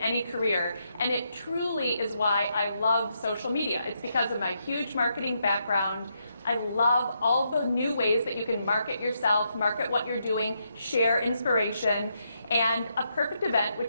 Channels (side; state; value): both; inverted; correlation -0.79